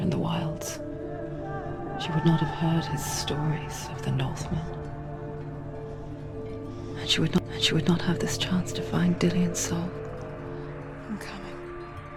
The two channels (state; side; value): identical; both; correlation 1.00